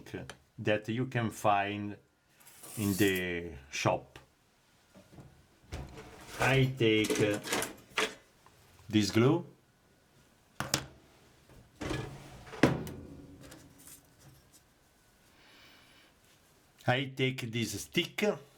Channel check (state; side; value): identical; both; correlation 1.00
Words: that you can find in the shop. I take this glue. I take this stick.